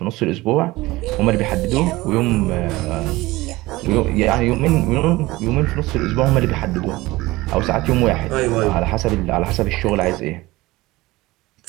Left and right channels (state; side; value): quieter; left; 19.7 dB